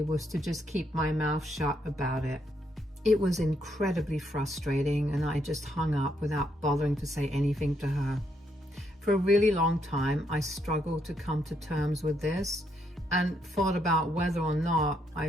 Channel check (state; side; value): normal; both; correlation 0.75